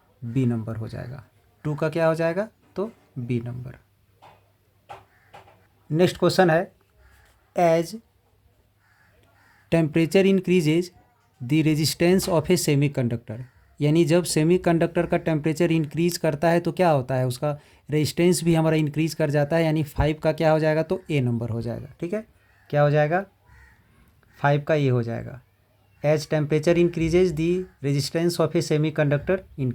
बी नंबर हो जाएगा। 2 का क्या हो जाएगा, तो बी नंबर। नेक्स्ट क्वेश्चन है, as temperature increases the resistance of a semiconductor. यानी जब सेमीकंडक्टर का टेम्परेचर इंक्रीज करता है तो क्या होता है, उसका रेजिस्टेंस भी हमारा इंक्रीज कर जाता है। यानी 5 का क्या हो जाएगा, तो ए नंबर हो जाएगा। ठीक है, क्या हो जाएगा, 5 का ए हो जाएगा। As temperature increases the resistance of a semiconductor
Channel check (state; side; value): identical; both; correlation 1.00